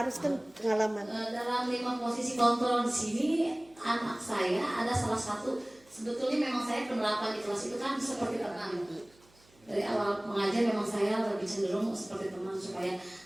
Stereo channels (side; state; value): right; noise; hum, 30 dB below the sound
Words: kan pengalaman. Dalam 5 posisi kontrol di sini, anak saya ada salah satu, sebetulnya memang saya penerapan di kelas itu kan seperti teman. Dari awal mengajar memang saya lebih cenderung seperti teman supaya